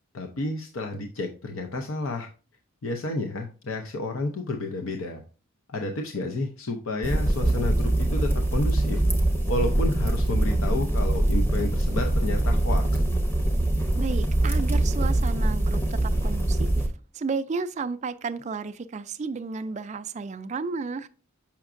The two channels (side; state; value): both; normal; correlation 0.83